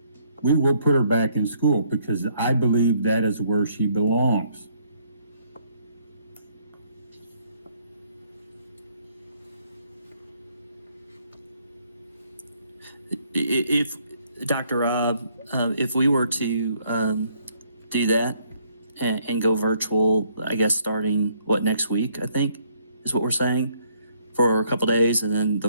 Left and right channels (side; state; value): both; inverted; correlation -0.68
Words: we will put her back in school because I believe that is where she belongs. If Dr. Rob, if we were to do that and go virtual, I guess starting next week, I think is what we're saying for a couple days, and then